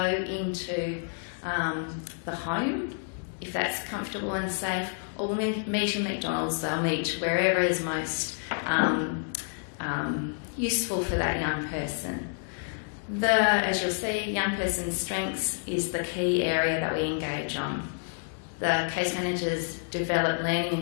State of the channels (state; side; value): silent; right; 59 dB below the other